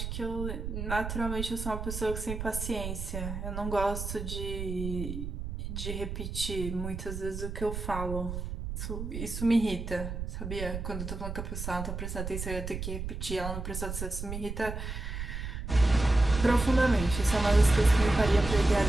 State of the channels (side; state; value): right; noise; rumble, 5 dB below the sound